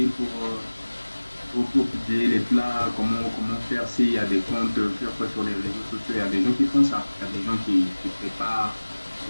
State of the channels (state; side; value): inverted; both; correlation -1.00